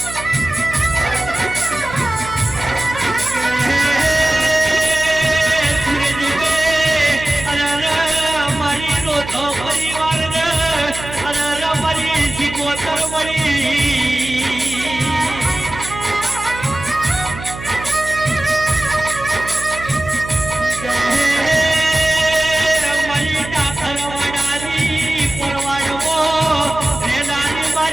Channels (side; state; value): right; noise; hum, 12 dB below the sound